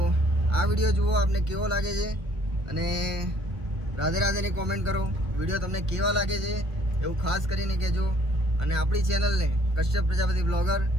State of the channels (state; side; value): late; left; 1.3 ms